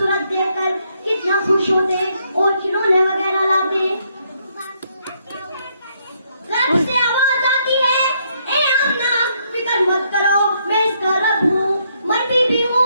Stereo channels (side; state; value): both; inverted; correlation -0.73